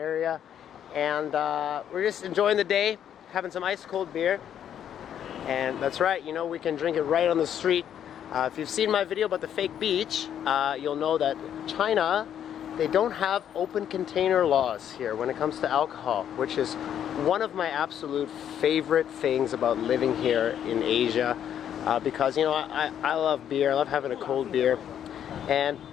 and we're just enjoying the day, having some ice cold beer. And that's right, you know, we can drink it right on the street. If you've seen my video about the fake beach, you'll know that China, they don't have open container laws here when it comes to alcohol, which is one of my absolute favorite things about living here in Asia, because, you know, I love beer. I love having a cold beer. And,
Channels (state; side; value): quieter; right; 9.6 dB